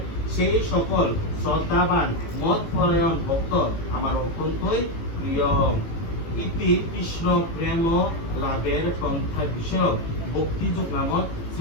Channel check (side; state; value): right; late; 18 ms